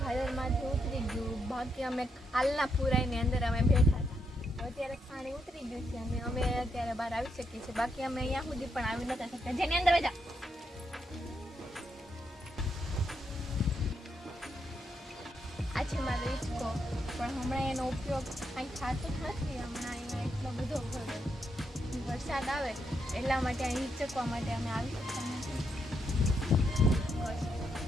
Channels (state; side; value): normal; both; correlation 0.80